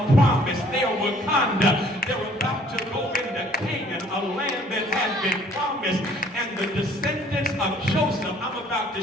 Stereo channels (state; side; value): normal; both; correlation 0.58